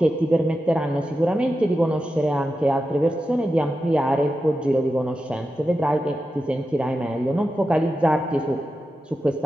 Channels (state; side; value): normal; both; correlation 0.90